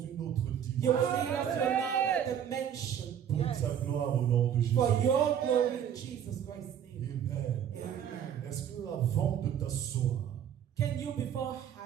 autre you will dimension. lead us to another dimension Pour ta gloire au nom de Jésus. for your glory in Jesus Christ's name. Amen. Amen. Est-ce que avant de t'asseoir, Can you, before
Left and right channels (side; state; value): left; quieter; 9.1 dB